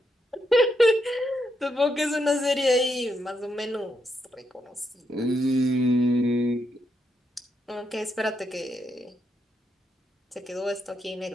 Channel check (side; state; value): both; normal; correlation 0.81